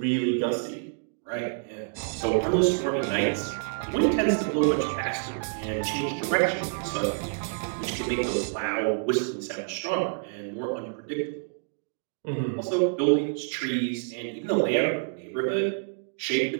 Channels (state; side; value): silent; left; digital silence